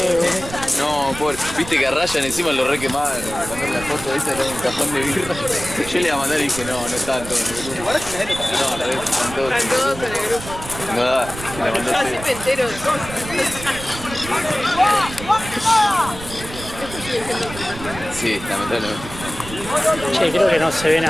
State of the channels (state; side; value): noise; right; rumble, 12 dB below the sound